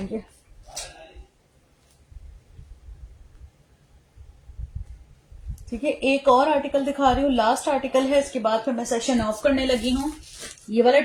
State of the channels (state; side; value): identical; both; correlation 1.00